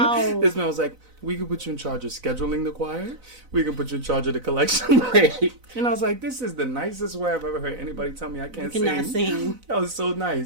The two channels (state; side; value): late; left; 4.0 ms